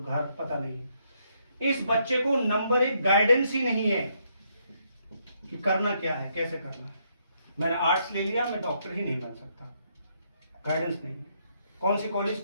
पता नहीं। इस बच्चे को नंबर 1 गाइडेंस ही नहीं है कि करना क्या है, कैसे करना है। मैंने आर्ट्स ले लिया, मैं डॉक्टर ही नहीं बन सकता, गाइडेंस नहीं है। कौन सी कॉलेज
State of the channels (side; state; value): both; inverted; correlation -0.74